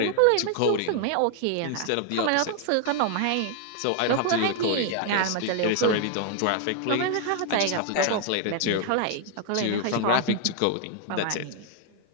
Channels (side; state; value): both; different; correlation 0.00